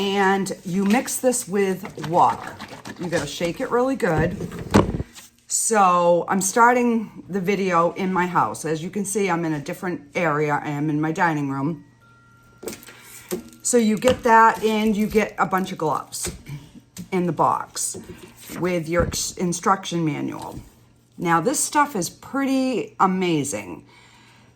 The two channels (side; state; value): both; identical; correlation 1.00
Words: you mix this with water. You gotta shake it really good. So I'm starting the video in my house. As you can see, I'm in a different area. I am in my dining room. So you get that, and you get a bunch of gloves in the box with your instruction manual. Now this stuff is pretty amazing.